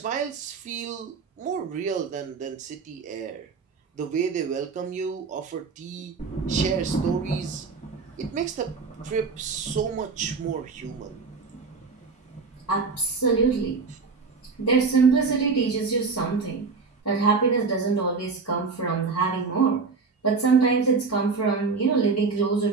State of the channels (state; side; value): quieter; left; 4.6 dB